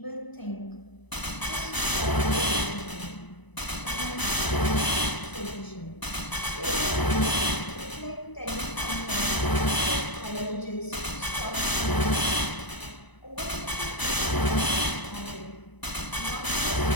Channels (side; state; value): right; late; 1.0 ms